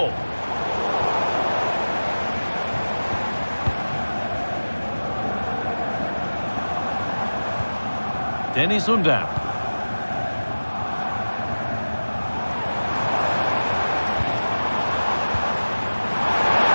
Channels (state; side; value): inverted; both; correlation -1.00